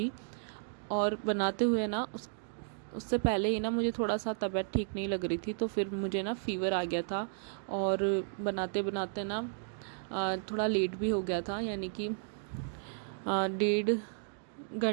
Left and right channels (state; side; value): silent; left; digital silence